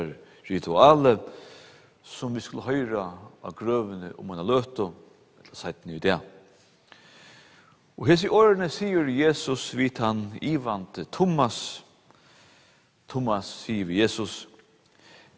rituale, som vi skulle høyra av grøvene om man har løtt og seiten i det. Og hese årene sier Jesus vidt han ivante Thomas. Thomas sier vi Jesus,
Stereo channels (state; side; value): identical; both; correlation 1.00